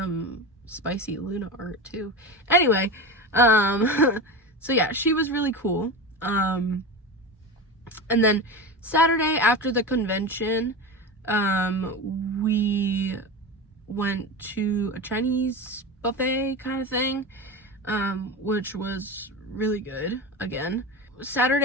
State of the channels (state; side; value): normal; both; correlation 0.25